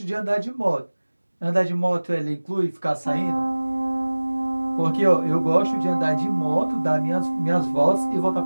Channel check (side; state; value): both; inverted; correlation -1.00